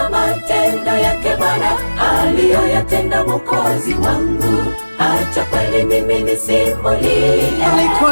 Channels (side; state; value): both; inverted; correlation -1.00